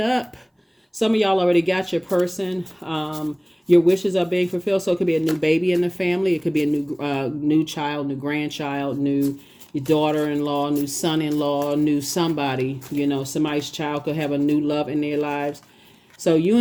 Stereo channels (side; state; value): both; identical; correlation 1.00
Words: Some of y'all already got your person. Your wishes are being fulfilled. So it could be a new baby in the family. It could be a new child, new grandchild, new daughter-in-law, new son-in-law, new somebody. You know, somebody's child could have a new love in their lives. So you